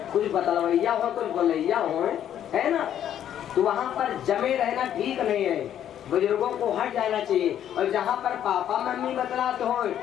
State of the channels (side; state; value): right; quieter; 10.4 dB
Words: कुछ बतलवैया हो कुछ बोलैया हो, है ना। तो वहाँ पर जमे रहना ठीक नहीं है, बुजुर्गों को हट जाना चाहिए। और जहाँ पर पापा मम्मी बतलाते हो